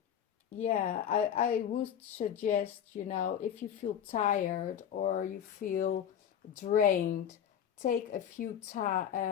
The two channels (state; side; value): quieter; right; 9.2 dB